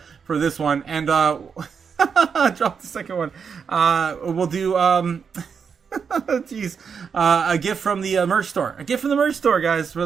For this one, and drop the second one. We'll do a gift from the merch store. Guys, for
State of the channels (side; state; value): left; quieter; 6.4 dB